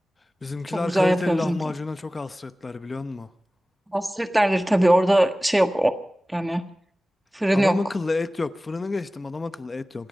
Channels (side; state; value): both; normal; correlation 0.97